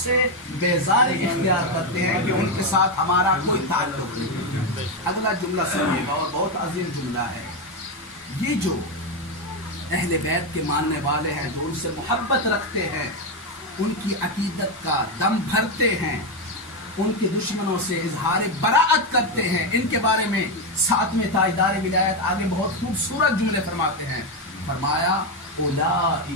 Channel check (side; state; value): both; normal; correlation 0.08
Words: سے بیزاری اختیار کرتے ہیں کہ ان کے ساتھ ہمارا کوئی تعلق نہیں۔ اگلا جملہ سنیے گا اور بہت عظیم جملہ ہے۔ یہ جو اہل بیت کے ماننے والے ہیں، جو ان سے محبت رکھتے ہیں، ان کی عقیدت کا دم بھرتے ہیں، ان کے دشمنوں سے اظہار براءت کرتے ہیں، ان کے بارے میں 7ویں تاجدار ولایت آگے بہت خوبصورت جملے فرماتے ہیں۔ فرمایا